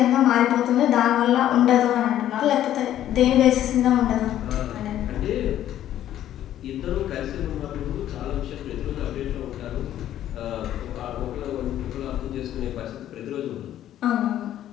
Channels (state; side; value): quieter; right; 11.9 dB